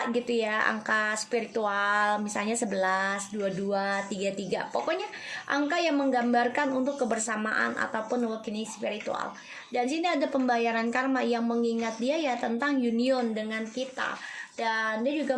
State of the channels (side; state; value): both; identical; correlation 1.00